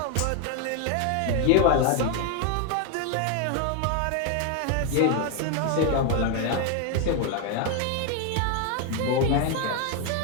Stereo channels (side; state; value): both; different; correlation 0.01